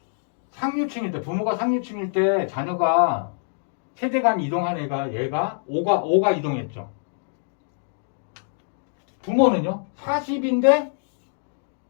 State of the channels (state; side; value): silent; right; digital silence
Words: 상류층일 때 부모가 상류층일 때 자녀가 세대 간 이동한 얘가 5가 이동했죠. 부모는요 40인데